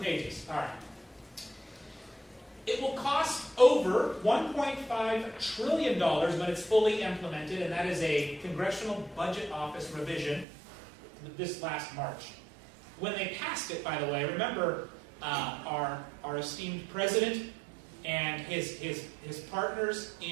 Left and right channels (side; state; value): left; drops out; at 10.5 s